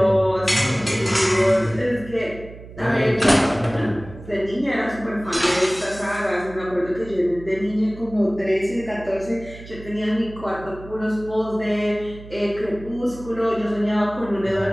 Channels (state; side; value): noise; right; hum, 16 dB below the sound